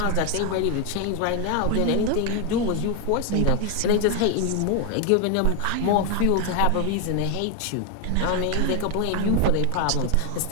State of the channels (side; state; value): both; different; correlation 0.01